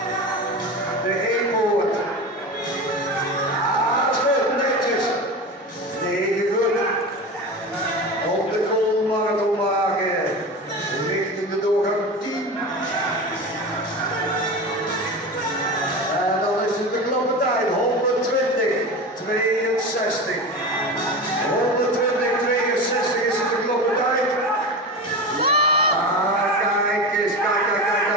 De E-poort. Ah, dat is goed, netjes. 9 goed. Op de koolmarathon maken. Richting de doorgang 10. En dan is het de knappe tijd. 120, 62. 120, 62 is het de knappe tijd. Ah, kijk eens, kijk.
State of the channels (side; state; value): both; normal; correlation 0.27